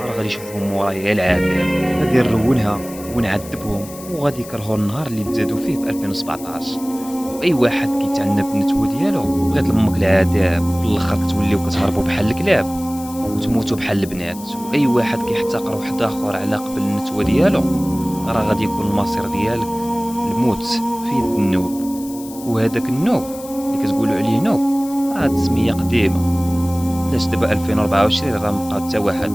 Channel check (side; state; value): left; noise; hiss, 16 dB below the sound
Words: غادي يشوفهم مورايا غير العذاب، غادي نرونها ونعذبهم وغادي يكرهوا النهار اللي تزادوا فيه في 2017. واي واحد كيتعنى بالنتوه ديالو بغيت لامك العذاب، في الاخر كتوليو كتهربوا بحال الكلاب وتموتوا بحال البنات. واي واحد كيحتقر واحد اخر على قبل النتوه ديالو راه غادي يكون المصير ديالك الموت في يد النوب. وهذاك النوب اللي كتقولوا عليه نوب راه هاد السميه قديمه، علاش دابا 2024 راه مبقى حتى واحد